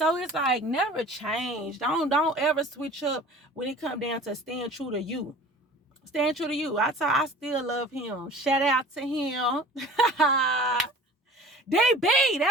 it's like, never change. Don't ever switch up when it come down to staying true to you. Staying true to you. I still love him. Shout out to him. DB,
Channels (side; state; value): both; normal; correlation 0.44